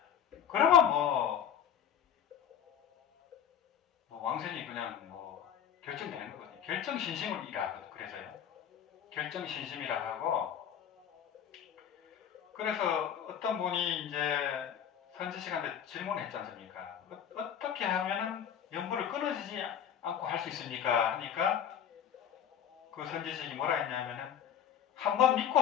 그러면 왕생이 그냥 결정되는 거거든요. 결정신심이라 그래서요. 결정신심이라 하고 그래서 어떤 분이 이제 선지식한테 질문했지 않습니까? 어떻게 하면은 연보를 끊어지지 않고 할 수 있습니까? 하니까 그 선지식이 뭐라 했냐면은 한번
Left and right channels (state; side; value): quieter; right; 8.9 dB